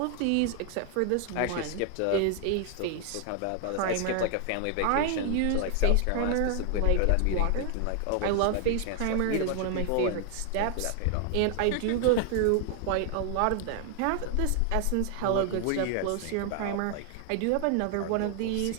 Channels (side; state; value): both; different; correlation 0.00